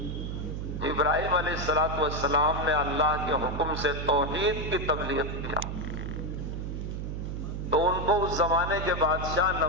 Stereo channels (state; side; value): noise; right; hum, 4 dB below the sound